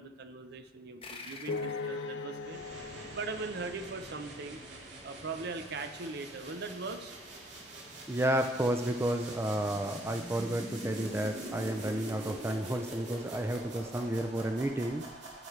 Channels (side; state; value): both; normal; correlation 0.65